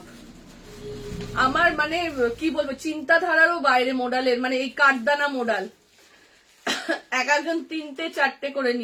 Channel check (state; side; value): identical; both; correlation 1.00